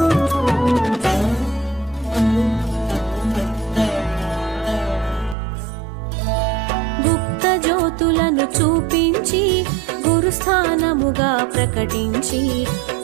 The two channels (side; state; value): left; drops out; at 5.4 s